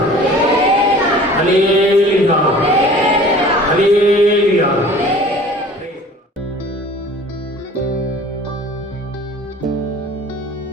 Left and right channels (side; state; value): both; normal; correlation 0.46